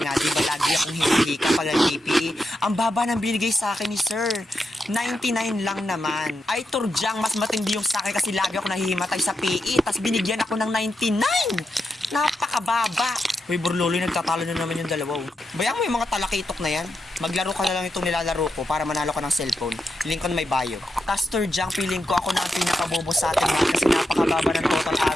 di ba, lagi akong hinihika pag nag-PPE. Ang baba ng binigay sa akin ni sir. 99 lang naman. Ay, Turjang, mas matindi yung sa akin kasi lagi ako nahihimatay sa PE. Tas binigyan ako ng 99. Napakababa. Uy, Borloloy, nagtatalo na naman yung dalawa. Bayang mo yung mga talakitok na yan. Maglaro ka na lang itong nilalaro ko para manalo ka ng cellphone. Link ko na may bio. Tas, Turjang, feeling ko ako na ang pinakabobo sa atin ha, kasi napakababa ng total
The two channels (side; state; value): both; normal; correlation 0.86